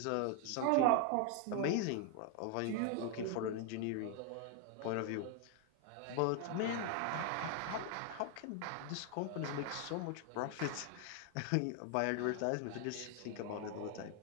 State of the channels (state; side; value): different; both; correlation 0.01